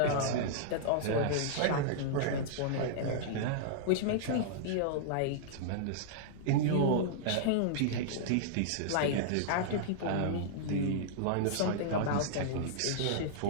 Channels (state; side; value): different; both; correlation -0.02